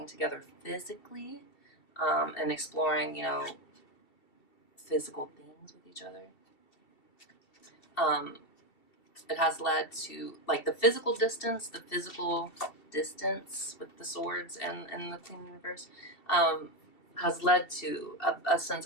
together physically, and exploring, you know, physical things with each other. It has led to, like, the physical distance with the swords and the Queen Universe, has led to a sense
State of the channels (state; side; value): late; right; 2.7 ms